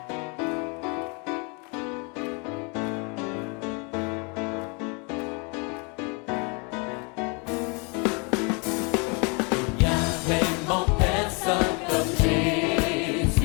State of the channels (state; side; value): quieter; right; 32.7 dB